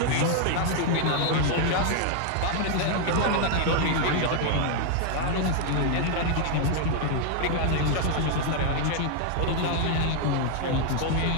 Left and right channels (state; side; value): different; both; correlation 0.00